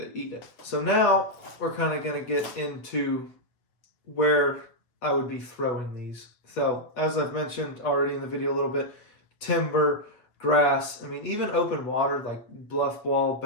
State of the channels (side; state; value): right; late; 8.0 ms